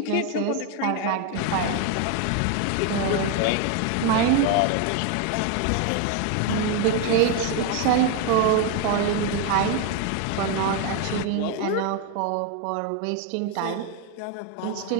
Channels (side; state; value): both; different; correlation 0.01